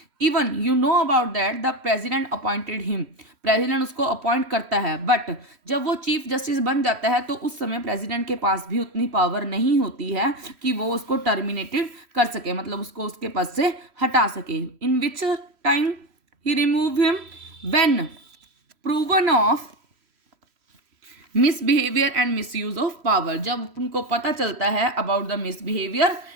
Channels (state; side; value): late; left; 3.1 ms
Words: Even you know about that the president appointed him. President उसको अपॉइंट करता है, बट जब वो चीफ जस्टिस बन जाता है तो उस समय प्रेसिडेंट के पास भी उतनी पावर नहीं होती है कि वो उसको टर्मिनेटेड कर सके, मतलब उसको उसके पद से हटा सके. इन विच टाइम ही remove him? When proven of misbehaviour and misuse of power. जब उनको पता चलता है about the misbehaviour